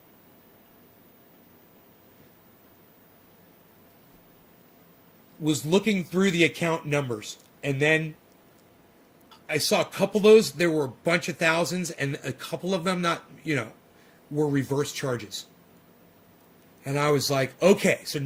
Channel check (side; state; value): both; identical; correlation 1.00